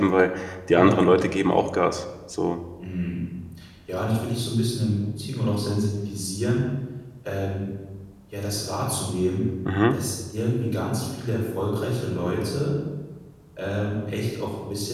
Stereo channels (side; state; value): both; identical; correlation 1.00